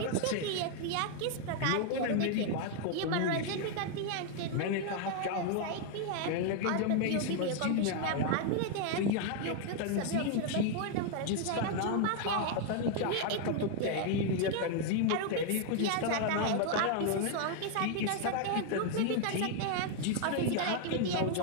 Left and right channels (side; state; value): both; different; correlation 0.00